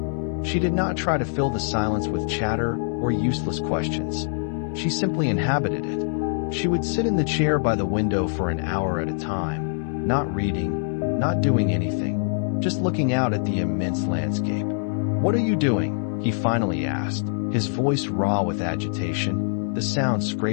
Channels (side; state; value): right; silent; 61 dB below the other